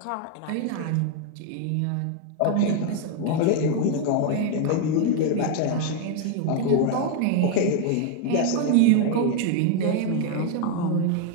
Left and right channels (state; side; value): different; both; correlation 0.01